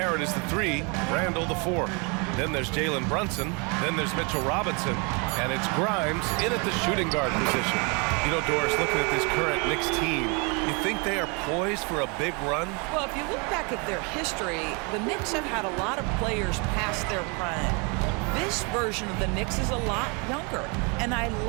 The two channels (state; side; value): quieter; left; 32.3 dB